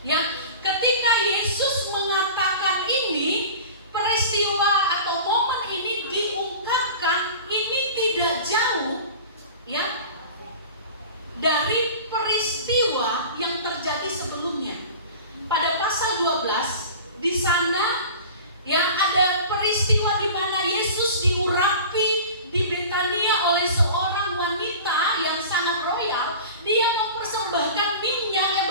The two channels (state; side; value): inverted; both; correlation -0.37